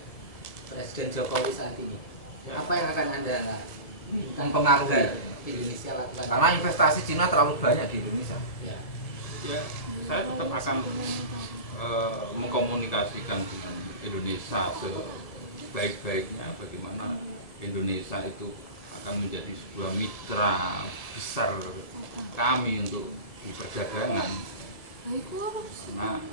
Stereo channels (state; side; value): late; right; 1.7 ms